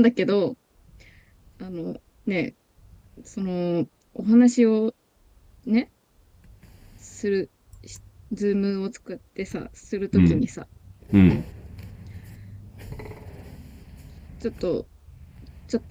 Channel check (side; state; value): both; identical; correlation 1.00